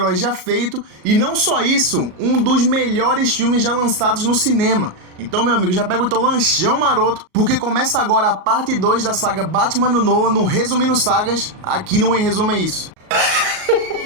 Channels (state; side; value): late; left; 38 ms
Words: já feito e não só isso, um dos melhores filmes já lançados no cinema. Então, meu amigo, já pega o teu lanchão maroto, porque começa agora a parte 2 da saga Batman do Nolan no Resumindo Sagas, aqui no Em Resumo é Isso.